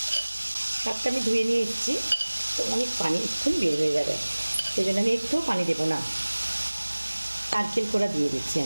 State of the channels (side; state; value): both; inverted; correlation -1.00